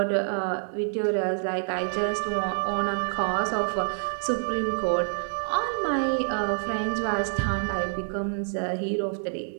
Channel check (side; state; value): left; silent; digital silence